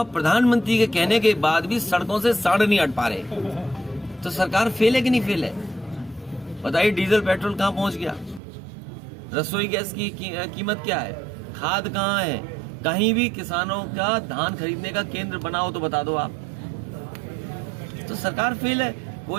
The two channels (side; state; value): left; drops out; at 8.4 s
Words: प्रधानमंत्री के कहने के बाद भी सड़कों से सांड नहीं हट पा रहे, तो सरकार फेल है कि नहीं फेल है? बताइए, डीजल पेट्रोल कहाँ पहुंच गया? रसोई गैस की कीमत क्या है? खाद कहाँ है? कहीं भी किसानों का धान खरीदने का केंद्र बनाओ तो बता दो आप। तो सरकार फेल है।